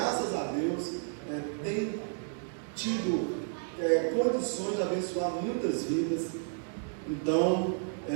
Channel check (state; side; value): silent; left; digital silence